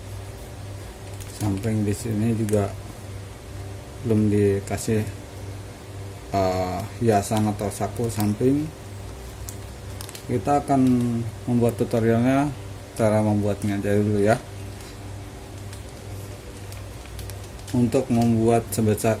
samping di sini juga belum dikasih hiasan atau saku samping. Kita akan membuat tutorialnya, cara membuatnya aja dulu ya. Untuk membuat sebesar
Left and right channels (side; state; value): both; identical; correlation 1.00